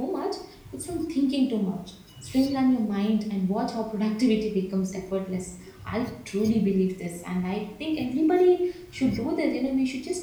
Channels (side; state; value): both; identical; correlation 1.00